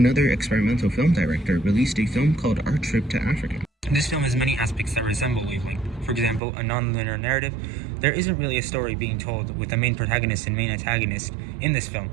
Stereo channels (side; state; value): left; drops out; at 6.4 s